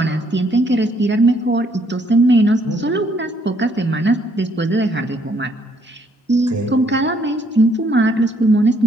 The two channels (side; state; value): both; normal; correlation 0.67